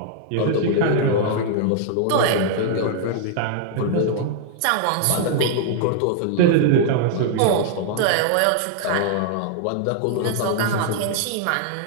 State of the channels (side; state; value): both; different; correlation 0.00